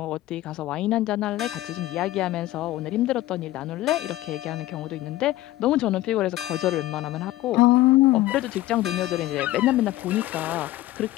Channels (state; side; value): quieter; right; 15.9 dB